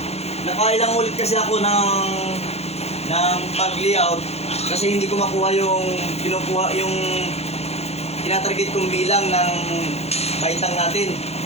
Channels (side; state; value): right; late; 0.31 ms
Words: nakailang ulit kasi ako ng pag-layout kasi hindi ko makuha yung tinatarget kong bilang ng baitang natin.